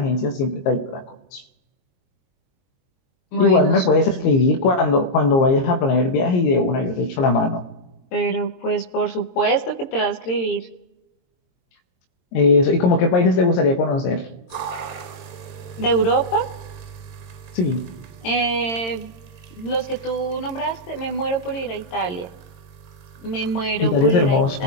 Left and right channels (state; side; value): late; right; 22 ms